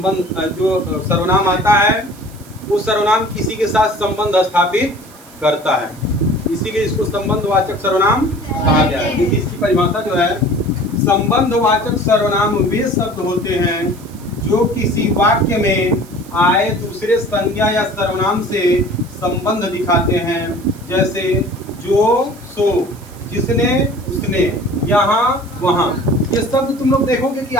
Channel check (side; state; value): right; noise; hiss, 23 dB below the sound